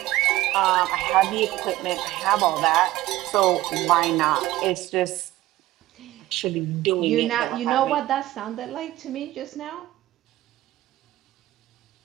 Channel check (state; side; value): quieter; left; 16.3 dB